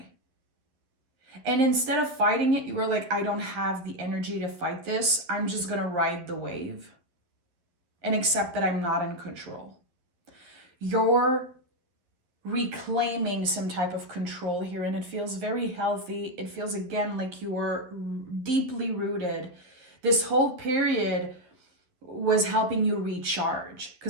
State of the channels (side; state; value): left; late; 11 ms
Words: And instead of fighting it, you were like, I don't have the energy to fight this. I'm just going to ride the wave and accept that I'm not in control. You're reclaiming some type of control here, and it feels very healthy. It feels, again, like you were deeply rooted. This whole period was helping you recharge,